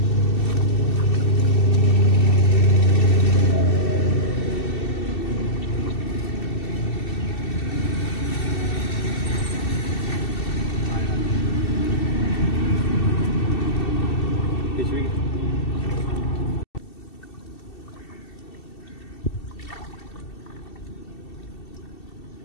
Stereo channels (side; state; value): right; late; 2.7 ms